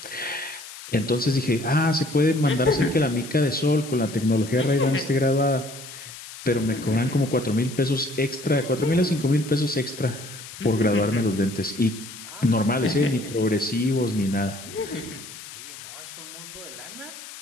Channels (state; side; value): noise; left; hiss, 14 dB below the sound